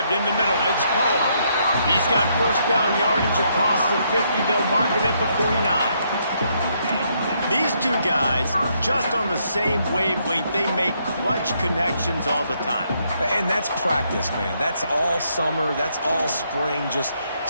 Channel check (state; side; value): inverted; both; correlation -0.74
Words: in the middle. It's Poe. He's got first down yardage across the 50. They'll mark it at the 49. These two guys, just on the same wavelength, they make clutch connections all the time. And that's practice, man. That's all summer. That's all spring. Just